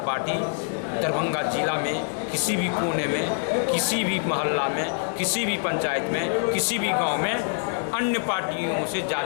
पार्टी दरभंगा जिला में किसी भी कोने में, किसी भी मोहल्ला में, किसी भी पंचायत में, किसी भी गांव में अन्य पार्टियों से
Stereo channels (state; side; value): silent; right; digital silence